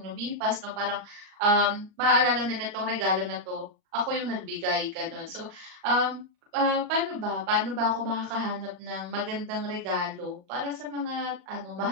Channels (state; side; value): late; left; 39 ms